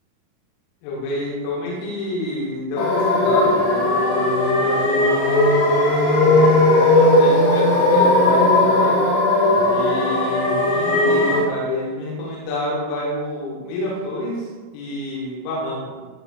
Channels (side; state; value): right; late; 39 ms